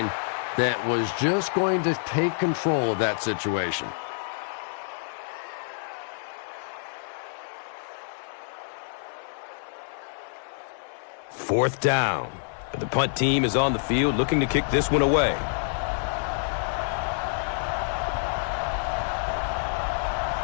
that was just going to take control of that situation. Fourth down. The punt team is on the field looking to kick this one away.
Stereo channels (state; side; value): silent; right; 60 dB below the other